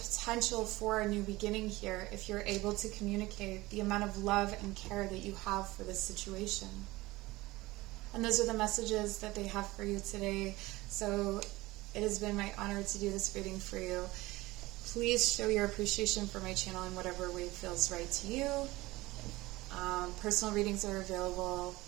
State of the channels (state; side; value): quieter; left; 19.7 dB